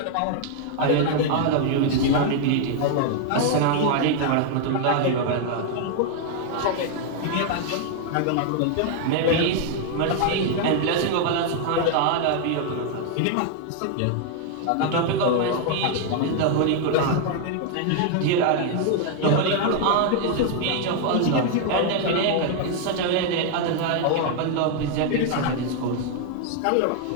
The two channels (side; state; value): both; different; correlation 0.00